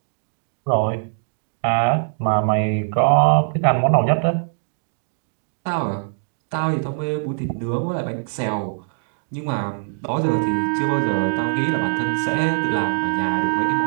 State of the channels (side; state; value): left; silent; digital silence